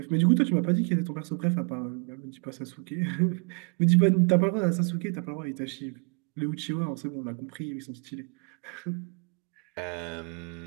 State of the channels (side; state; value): left; quieter; 38.0 dB